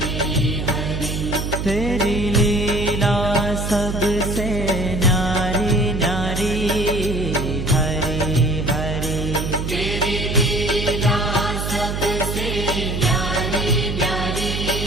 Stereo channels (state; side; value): noise; right; hum, 3 dB below the sound